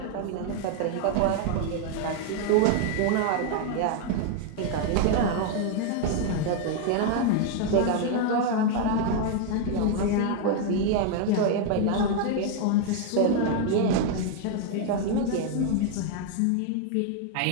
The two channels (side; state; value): both; different; correlation 0.00